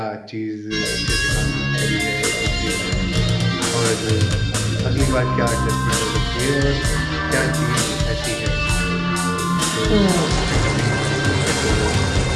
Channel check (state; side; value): identical; both; correlation 1.00